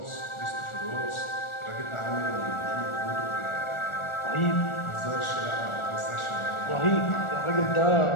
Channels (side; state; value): right; late; 1.4 ms